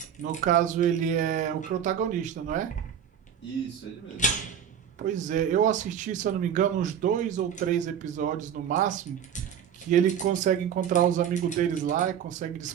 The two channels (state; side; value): quieter; left; 8.7 dB